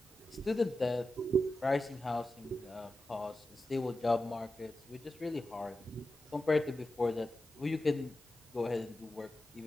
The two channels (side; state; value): both; normal; correlation 0.91